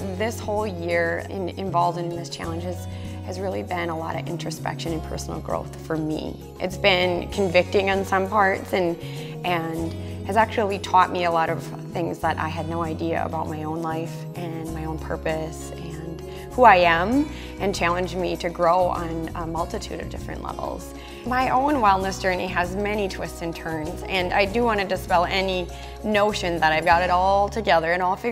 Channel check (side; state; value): both; identical; correlation 1.00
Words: This whole year involved in this challenge has really been a lot of introspection and personal growth for me. It's been convicting on some parts and has actually taught me a lot of things that I had no idea about my own life and my own purpose and who I am, and challenged me to grow on a multitude of different levels. My own wellness journey has many twists and turns, and I do want to dispel any notion that I've got it all together and all